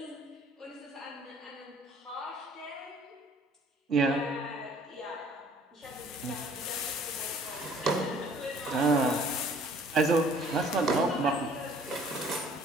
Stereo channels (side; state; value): both; normal; correlation 0.56